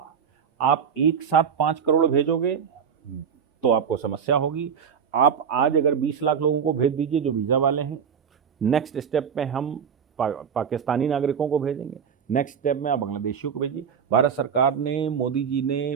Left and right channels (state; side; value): quieter; left; 7.3 dB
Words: आप एक साथ 5 करोड़ भेजोगे तो आपको समस्या होगी। आप आज अगर 20 लाख लोगों को भेज दीजिए जो वीजा वाले हैं, नेक्स्ट स्टेप में हम पाकिस्तानी नागरिकों को भेजेंगे, नेक्स्ट स्टेप में आप बांग्लादेशियों को भेजिए। भारत सरकार ने, मोदी जी